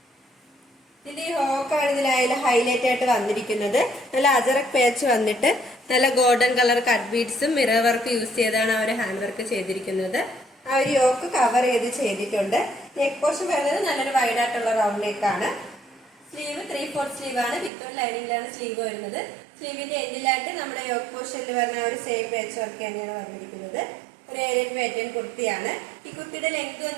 ഇതിന്റെ ഈ ഹോക്കാണ് ഇതിലായാലും ഹൈലൈറ്റ് ആയിട്ട് വന്നിരിക്കുന്നത്. നല്ല അജറക് പേച്ച് വന്നിട്ട് നല്ല ഗോൾഡൻ കളർ കട്ട് ബീഡ്സും മിറർ വർക്ക് യൂസ് ചെയ്താണ് ആ ഒരു ഹാൻഡ് വർക്ക് ചെയ്തിരിക്കുന്നത്. ആ ഒരു യോക്ക് കവർ ചെയ്തിട്ടുണ്ട്. നെക്ക് പോർഷൻ വരുന്നത് നല്ലൊരു വൈഡ് ആയിട്ടുള്ള റൗണ്ട് നെക്കാണ്. സ്ലീവ് 3/4 സ്ലീവ് ആണ്. വിത്ത് ലൈനിങ്ങിലാണ് സ്ലീവ് വരുന്നത്. സ്ലീവിന്റെ എൻഡിലായിട്ട് നമ്മുടെ യോക്ക് പോർഷനിൽ വരുന്ന ഒരു സെയിം പേച്ച് വർക്ക് തന്നെയാണ് വന്നിരിക്കുന്നത്. ഒരു ഏരിയൻ പാറ്റേൺ കുർത്തിയാണ്. ഈ കുർത്തിയുടെ ലെങ്ത്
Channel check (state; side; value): drops out; left; at 17.7 s